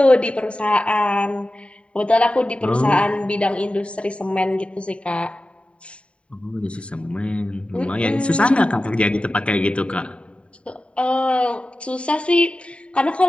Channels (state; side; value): late; right; 0.060 ms